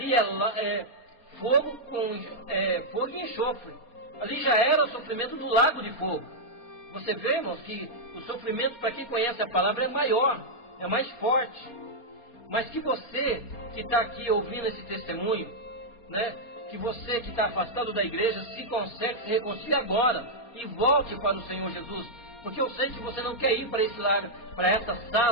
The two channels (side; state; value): right; late; 4.3 ms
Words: é fogo e enxofre. Ali já era o sofrimento do lago de fogo. Você vê, irmãos, que o sofrimento, para quem conhece a palavra, é maior, é mais forte. Mas que você que está aqui ouvindo esse testemunho, né, que você que está afastado da igreja, se conserte, se reconcilie agora e volte para o Senhor Jesus. Porque eu sei que você não quer ir para esse lago, para essa